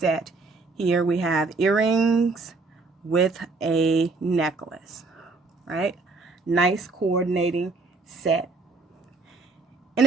Here we have earrings with a necklace, right? Nice coordinating set. In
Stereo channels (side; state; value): left; quieter; 3.8 dB